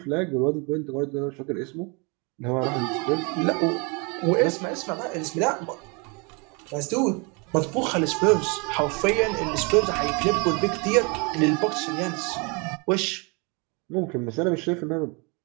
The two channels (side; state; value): left; quieter; 31.2 dB